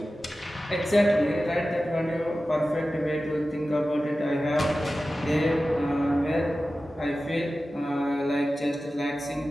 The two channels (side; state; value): both; normal; correlation 0.95